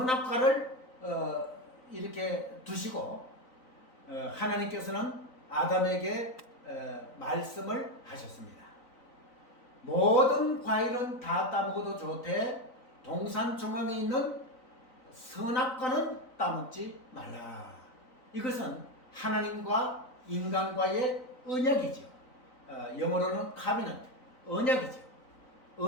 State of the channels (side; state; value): right; late; 3.9 ms